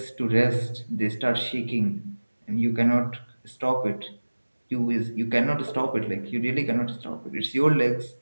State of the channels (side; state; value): both; inverted; correlation -1.00